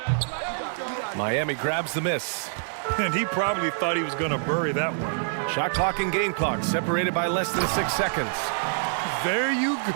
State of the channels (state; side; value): silent; left; digital silence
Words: Miami grabs the miss. And he probably thought he was going to bury that one. Shot clock and game clock separated by less than 6 seconds. There you